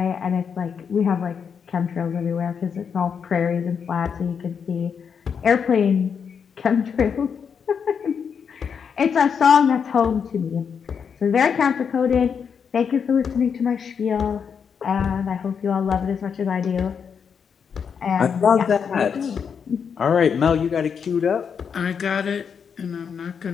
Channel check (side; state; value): right; quieter; 6.8 dB